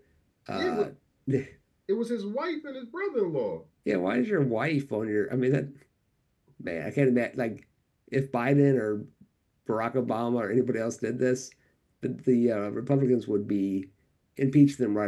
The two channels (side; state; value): both; identical; correlation 1.00